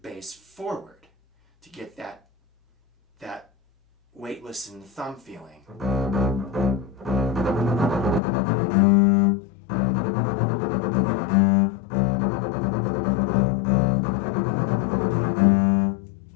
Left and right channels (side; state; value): right; drops out; at 8.2 s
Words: forward to get that weightless in the thumb feeling.